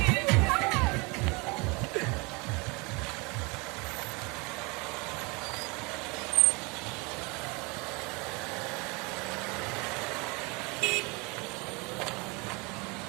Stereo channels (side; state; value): left; quieter; 28.0 dB